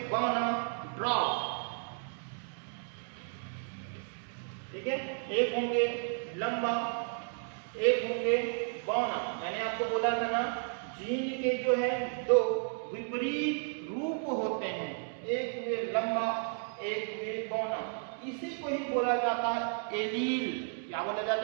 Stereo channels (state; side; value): silent; left; 56 dB below the other